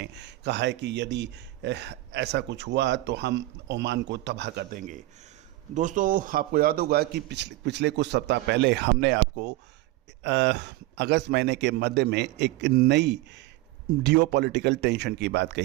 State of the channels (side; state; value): left; quieter; 18.3 dB